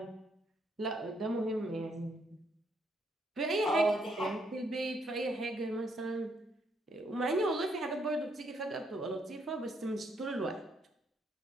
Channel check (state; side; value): normal; both; correlation 0.73